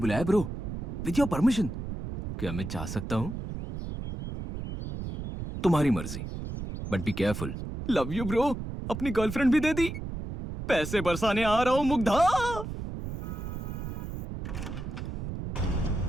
ब्रो, विद योर परमिशन। क्या मैं जा सकता हूँ? तुम्हारी मर्जी, but be careful. Love you bro. अपनी गर्लफ्रेंड भी दे दी। पैसे बरसाने आ रहा हूँ मुग्धा।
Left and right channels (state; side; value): noise; right; rumble, 6 dB below the sound